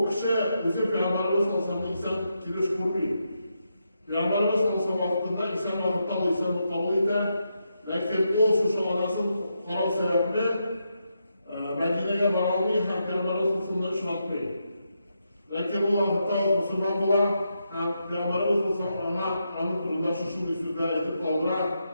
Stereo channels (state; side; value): inverted; both; correlation -0.83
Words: kishi o'zi Peygamberimiz sallallohu alayhi vasallam inson kelish ko'rmaydi. Peygamberimiz sallallohu alayhi vasallam vaqtida inson vaqtda insonni qabul etdi. Lekin o shu onasi qaror sababli Madinaga bora olmay ham Peygamberimiz sallallohu alayhi vasallam ishlatmaydi. Lekin bu vaqtda musulmon